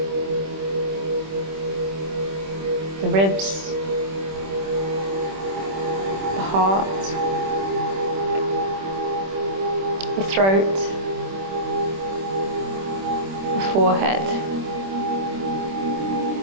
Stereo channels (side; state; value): left; late; 26 ms